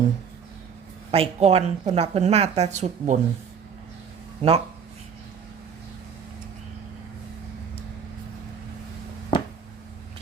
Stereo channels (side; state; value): left; quieter; 6.9 dB